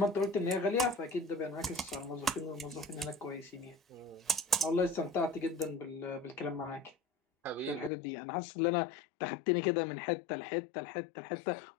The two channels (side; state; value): right; drops out; at 7.9 s